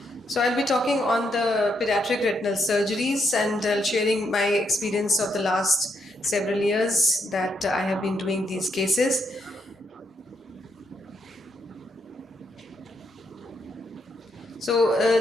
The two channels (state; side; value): normal; both; correlation 0.77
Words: So I'll be talking on the pediatric retinal surgeries and sharing my experience of the last several years that I have been doing these cases. So